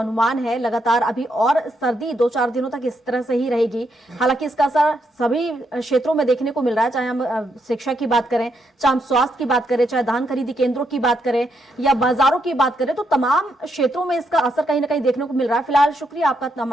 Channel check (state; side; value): normal; both; correlation 0.78